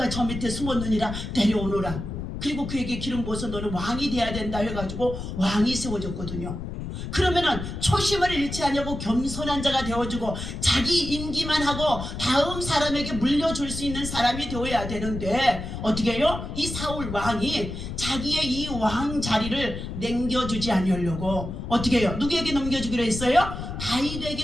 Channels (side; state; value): left; noise; rumble, 7 dB below the sound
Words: 저 밑에 숨었느니라 데려오노라. 그리고 그에게 기름 부어서 너는 왕이 돼야 된다 해가지고 왕이 세워졌거든요. 그러면은 초심을 잃지 않냐고 겸손한 자가 되어주고 자기 임기만 하고 다음 사람에게 물려줄 수 있는 사람이 되어야 되는데 어떻게 해요? 이 사울 왕이 자기의 이 왕 자리를 남겨주지 않으려고 어떻게 해요? 누구에게 넘겨주기로 했어요?